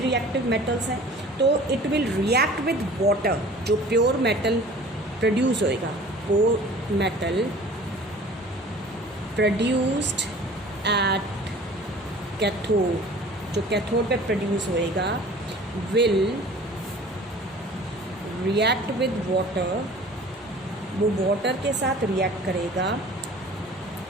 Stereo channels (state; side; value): normal; both; correlation 0.45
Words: मेटल्स हैं, तो it will react with water. जो प्योर मेटल प्रोड्यूस होएगा, वो मेटल प्रोड्यूस्ड एट कैथोड, जो कैथोड पे प्रोड्यूस होएगा, विल रिएक्ट विद वाटर, वो वाटर के साथ रिएक्ट करेगा,